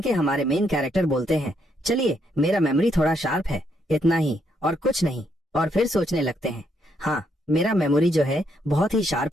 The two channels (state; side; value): normal; both; correlation 0.75